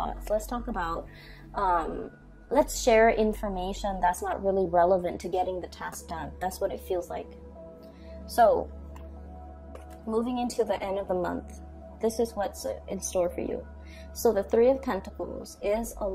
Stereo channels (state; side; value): identical; both; correlation 1.00